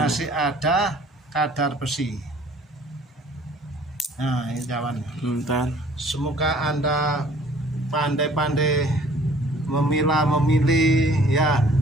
masih ada kadar besi. Nah, ini kawan. Bentar. Semoga Anda pandai-pandai memilih ya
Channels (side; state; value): both; normal; correlation 0.55